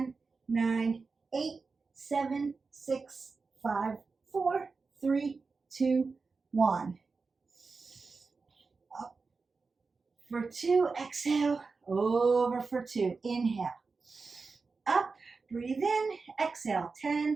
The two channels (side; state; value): left; quieter; 4.4 dB